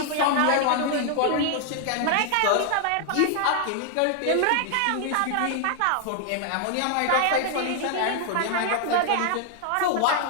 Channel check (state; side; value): different; both; correlation 0.00